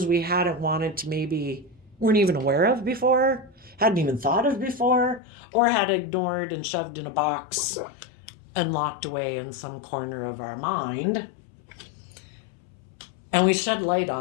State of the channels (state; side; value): drops out; right; at 5.2 s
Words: we hadn't wanted to, maybe weren't even aware of before, hadn't even thought of before, or had ignored and shoved in a box and locked away in some corner of our mind. And we shed light